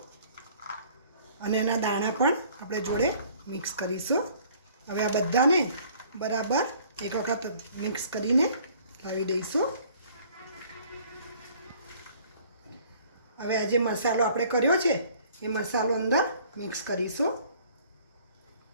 અને એના દાણા પણ આપણે જોડે મિક્સ કરીશું। હવે આ બધાને બરાબર એક વખત મિક્સ કરીને લાવી દઈશું। હવે આ જે મસાલો આપણે કર્યો છે એ મસાલો અંદર મિક્સ કરીશું।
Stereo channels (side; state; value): both; inverted; correlation -0.55